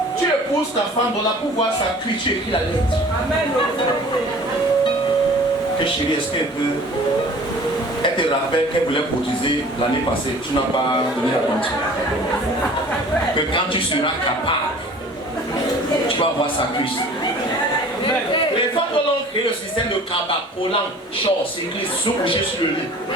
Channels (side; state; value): both; normal; correlation 0.46